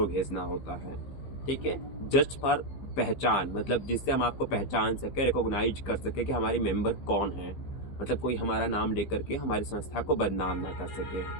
भेजना होता है। ठीक है, जस्ट फॉर पहचान, मतलब जिससे हम आपको पहचान सके, रिकॉग्नाइज कर सके कि हमारे मेंबर कौन है, मतलब कोई हमारा नाम लेकर के हमारी संस्था को बदनाम ना कर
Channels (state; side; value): late; right; 15 ms